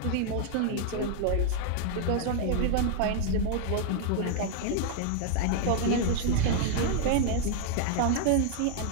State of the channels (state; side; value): different; both; correlation 0.00